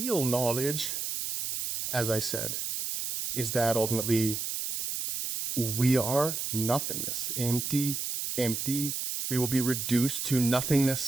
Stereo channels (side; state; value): right; noise; hiss, 3 dB below the sound